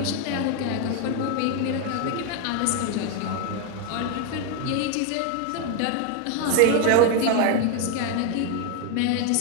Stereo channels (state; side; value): different; both; correlation 0.01